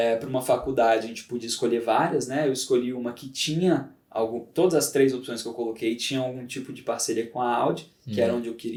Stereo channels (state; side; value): identical; both; correlation 1.00